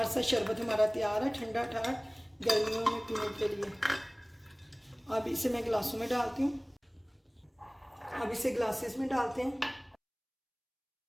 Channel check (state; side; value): identical; both; correlation 1.00